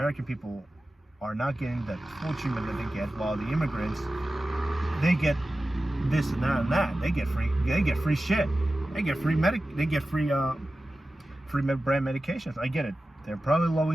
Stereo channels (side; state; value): both; normal; correlation 0.95